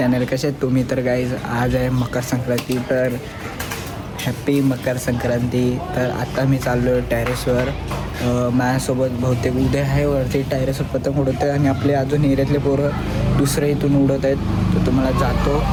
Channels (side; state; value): both; identical; correlation 1.00